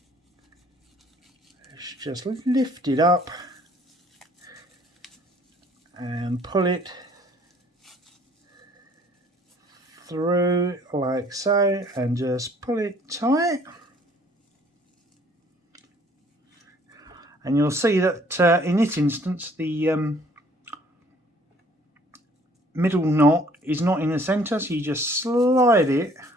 is just lift it up and pull it through like so, and just pull it tight, and you'll see that in this instance the middle knot is not in the center, so you just slide it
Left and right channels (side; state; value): both; normal; correlation 0.58